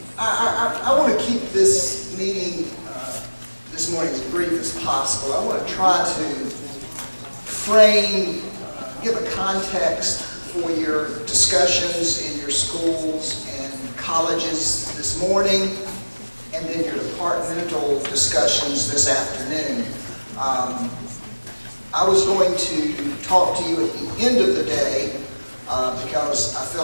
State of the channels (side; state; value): both; inverted; correlation -1.00